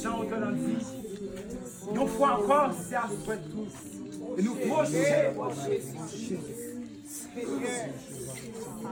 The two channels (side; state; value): both; identical; correlation 1.00